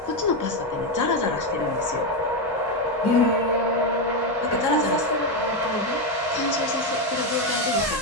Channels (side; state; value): both; normal; correlation 0.08